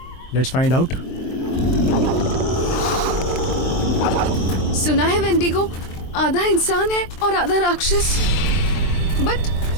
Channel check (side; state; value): right; late; 23 ms